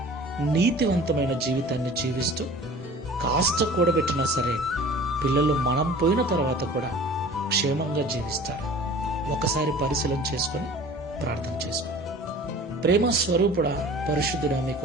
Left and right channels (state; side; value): normal; both; correlation 0.44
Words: నీతివంతమైన జీవితాన్ని జీవిస్తూ కాస్త కూడబెట్టినా సరే పిల్లలు మనం పోయిన తర్వాత కూడా క్షేమంగా జీవిస్తారు. ఒకసారి పరిశీలన చేసుకొని ప్రార్థన చేసుకో. ప్రేమ స్వరూపుడా, పరిశుద్ధుడా, మీకు